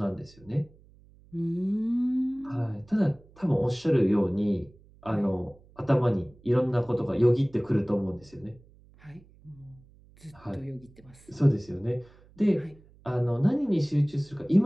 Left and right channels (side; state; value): right; noise; hum, 26 dB below the sound